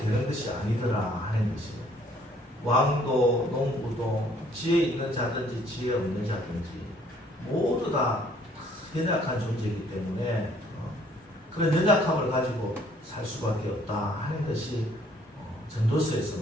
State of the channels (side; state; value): both; normal; correlation 0.61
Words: 것이 아니더라 하는 것이에요. 왕도 농부도 지혜 있는 자든지 지혜 없는 자든지 모두 다 연약한 존재이기 때문에 그런 연약함을 가지고 살 수밖에 없다 하는 것이 전도서에서